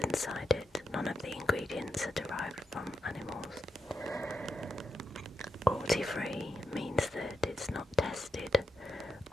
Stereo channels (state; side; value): normal; both; correlation 0.84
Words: inside it. None of the ingredients are derived from animals. Cruelty free means that it's not tested